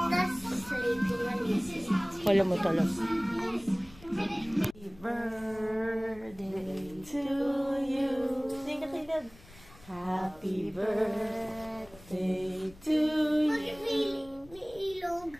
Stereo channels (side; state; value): left; noise; rumble, 22 dB below the sound